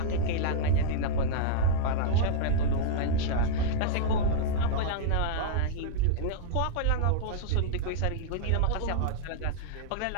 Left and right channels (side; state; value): both; different; correlation -0.01